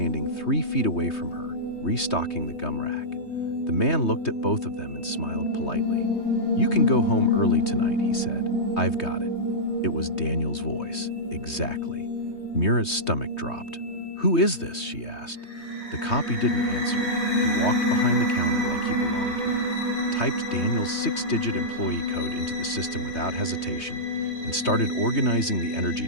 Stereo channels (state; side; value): late; right; 3.2 ms